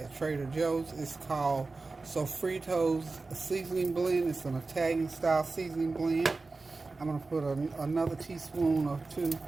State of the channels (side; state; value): left; quieter; 3.7 dB